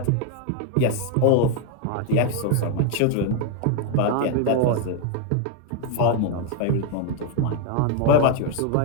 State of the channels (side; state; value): both; different; correlation 0.01